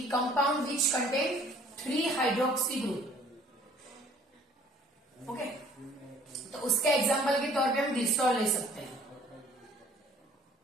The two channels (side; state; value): both; normal; correlation 0.56